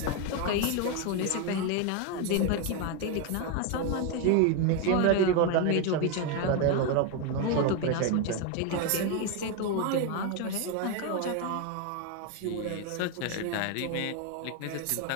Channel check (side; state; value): both; different; correlation 0.01